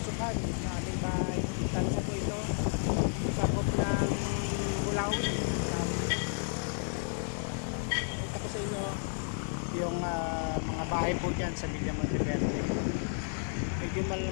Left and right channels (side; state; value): right; silent; 56 dB below the other